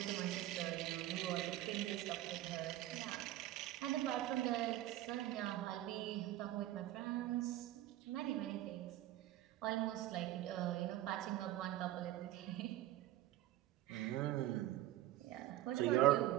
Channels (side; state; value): left; quieter; 14.5 dB